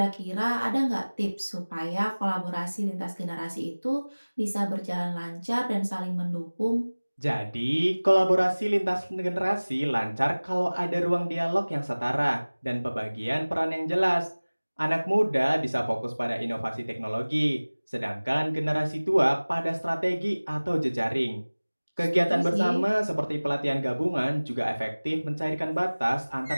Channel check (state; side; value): inverted; both; correlation -1.00